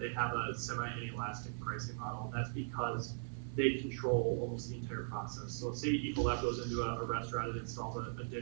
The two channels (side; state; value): left; silent; 52 dB below the other